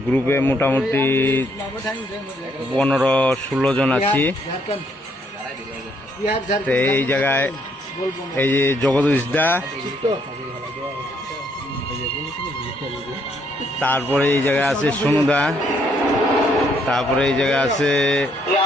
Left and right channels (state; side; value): normal; both; correlation 0.70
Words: গ্রুপে মোটামুটি 15-16 জন আছি। তো এই জায়গায় এই যে জগদীশ দা, তারপরে এই জায়গায় আছে সোনুদা, তারপরে এই জায়গায় আছে